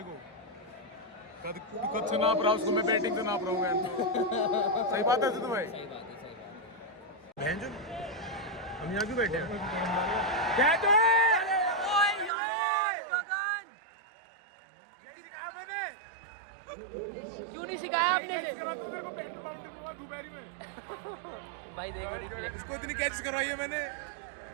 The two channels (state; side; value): drops out; left; at 12.3 s